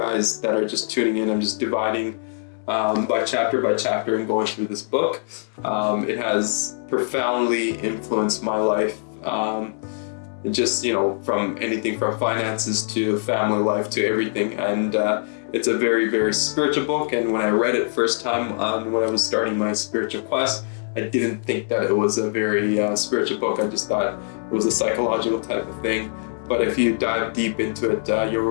that are just tuning in, I'm just dividing by chapter and going through this book. It has profoundly influenced my life. Just, from anything from finances to family life to everything. And it's a very, very spiritual book. And when I read it first time when I was starting my spiritual quest, I didn't think that it was a very spiritual book. I just thought it was a psychological type of thing. But if you dive deep into it, you'll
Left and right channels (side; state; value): right; silent; digital silence